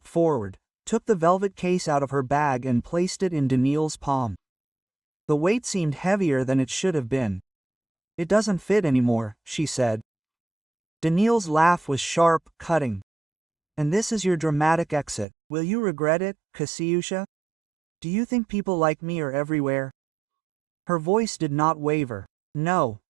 forward, took the velvet case out of her bag and placed it in Daniil's palm. The weight seemed heavier than it should have been. It doesn't fit anymore, she said. Daniil's laugh was sharp, cutting. And this is your dramatic exit. Will you regret it, Kasyusha? Do you think people like me are everywhere? Her voice did not waver. No,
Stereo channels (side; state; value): left; drops out; at 15.2 s